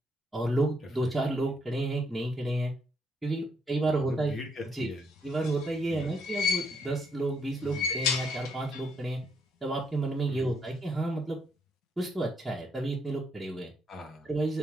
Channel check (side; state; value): both; normal; correlation 0.73